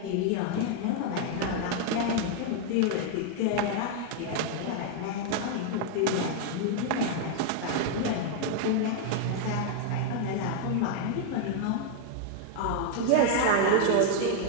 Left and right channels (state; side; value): different; both; correlation 0.00